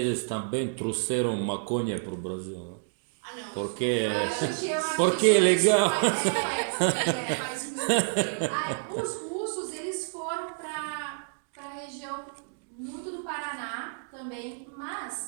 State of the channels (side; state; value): left; silent; digital silence